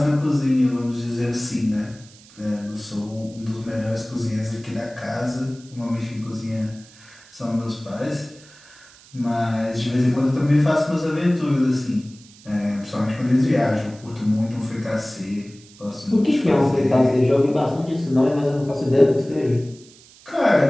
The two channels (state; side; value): noise; right; hiss, 24 dB below the sound